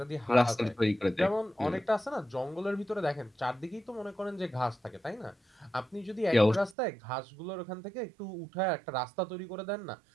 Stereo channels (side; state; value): left; drops out; at 6.8 s